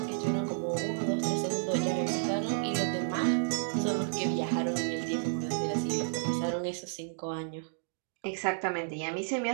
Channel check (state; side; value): silent; left; digital silence